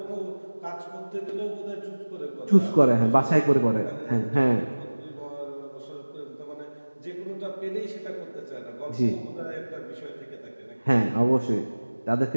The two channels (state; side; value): inverted; both; correlation -1.00